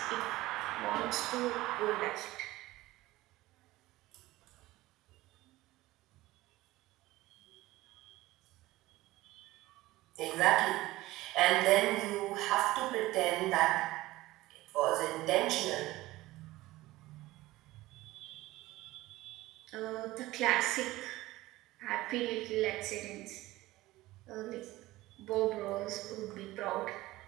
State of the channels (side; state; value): left; quieter; 18.0 dB